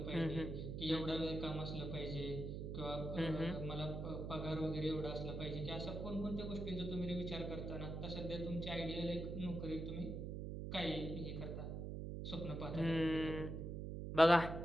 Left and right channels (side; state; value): right; noise; hum, 4 dB below the sound